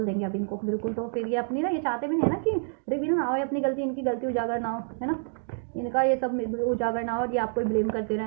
देंगे अब इनको बिल्कुल। तो फिर ये अपनी ना, ये चाहते भी नहीं है ना कि रिवील ना हो अपनी गलती, इनकी गलती उजागर ना हो, है ना, इनका ये सब उजागर ना हो और ये आपको ब्लेम करते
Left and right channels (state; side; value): silent; left; digital silence